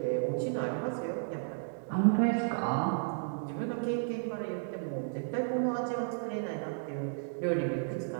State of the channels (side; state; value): left; silent; digital silence